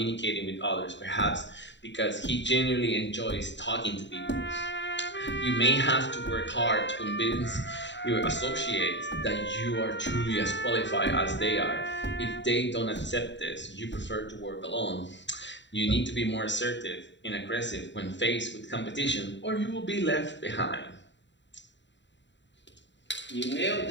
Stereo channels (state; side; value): late; right; 0.52 ms